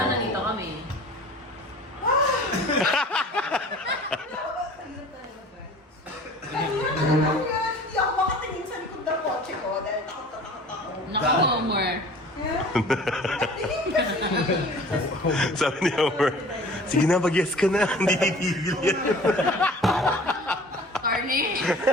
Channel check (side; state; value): both; normal; correlation 0.45